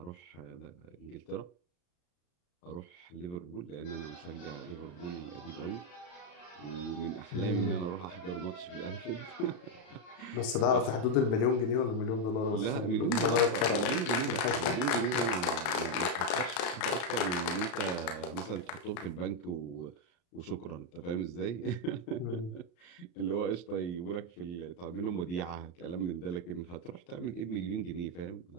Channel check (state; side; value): late; right; 34 ms